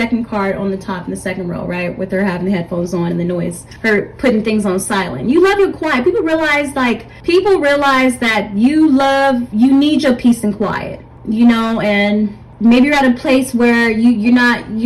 card on the top in the second row, right? With her having the headphones on and the noise, her putting things on silent. You love your quiet. People realize that you need your peace and quiet, you know. And maybe you're at a place where you're not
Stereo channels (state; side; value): identical; both; correlation 1.00